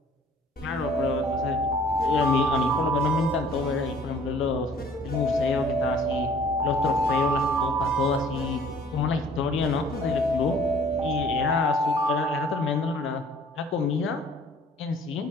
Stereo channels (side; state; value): both; normal; correlation 0.54